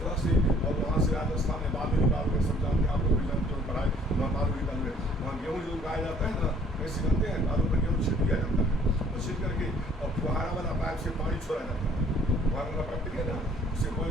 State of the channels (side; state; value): both; normal; correlation 0.58